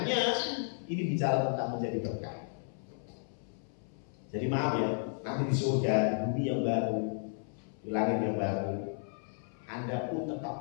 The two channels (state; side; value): silent; right; 55 dB below the other